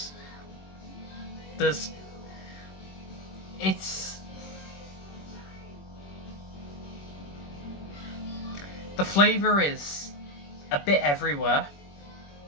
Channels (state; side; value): late; right; 21 ms